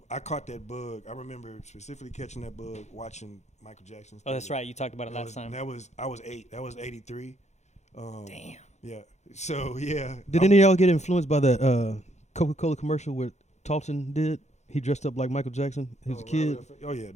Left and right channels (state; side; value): late; right; 0.33 ms